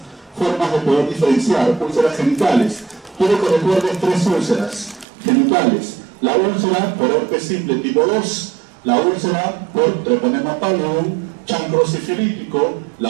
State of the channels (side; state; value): left; drops out; at 5.1 s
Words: formas de poder diferenciar úlceras genitales. Quiero que recuerdes 3 úlceras genitales: la úlcera por herpes simple tipo 2, la úlcera por treponema pallidum, chancro sifilítico,